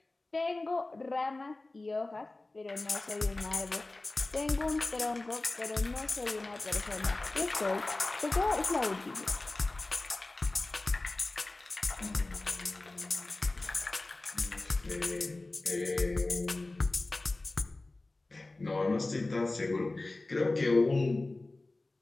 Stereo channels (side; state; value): right; quieter; 3.0 dB